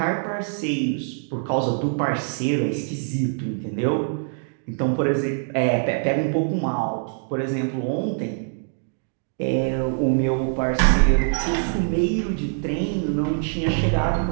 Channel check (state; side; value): silent; left; digital silence